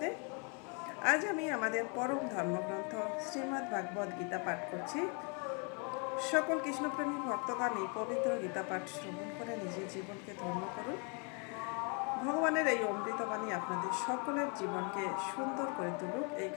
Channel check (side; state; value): right; quieter; 36.0 dB